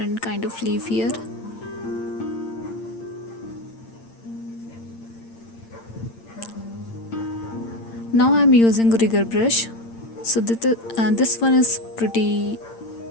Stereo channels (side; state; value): right; late; 8.8 ms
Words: kind of leaf here. Now I'm using rigger brush. So this one is pretty